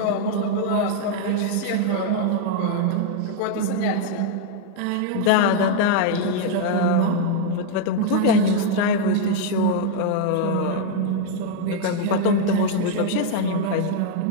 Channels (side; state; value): both; different; correlation 0.00